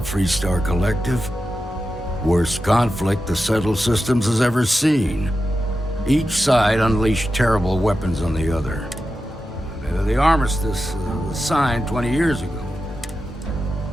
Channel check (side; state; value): both; normal; correlation 0.91